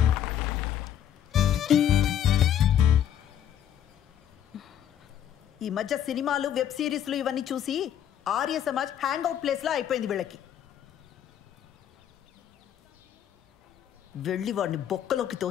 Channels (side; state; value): right; quieter; 10.0 dB